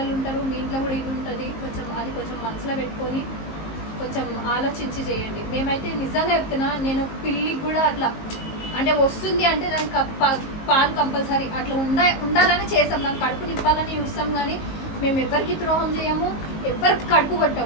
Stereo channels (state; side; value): late; right; 19 ms